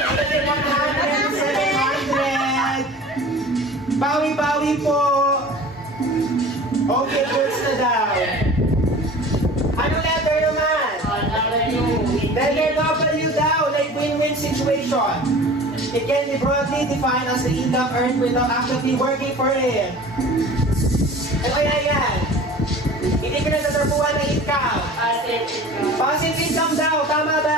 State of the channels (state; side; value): normal; both; correlation 0.41